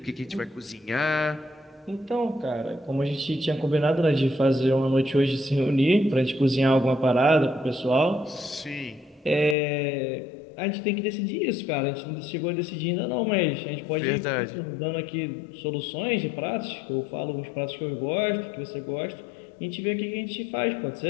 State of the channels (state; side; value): drops out; right; at 9.6 s